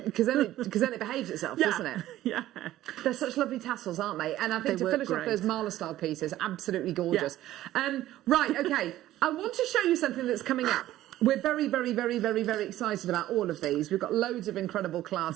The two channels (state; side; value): quieter; left; 14.3 dB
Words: Because then it behaves itself, doesn't it? Yeah. They're such lovely tassels, aren't they? And I think to finish off those Marla style pieces, absolutely gorgeous. Yeah. Right, okay. I want to show you something that's coming up. We're very, very, very, very, very excited about all of these. We've got loads of incredible